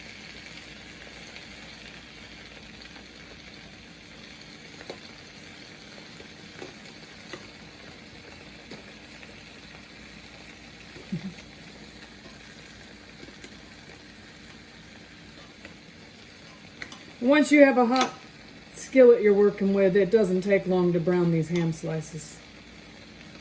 Once you have a hot skillet you're working with, it doesn't take long to brown these ham slices.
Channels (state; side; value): identical; both; correlation 1.00